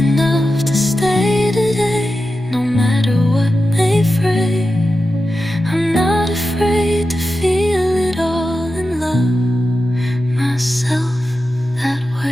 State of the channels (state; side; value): normal; both; correlation 0.91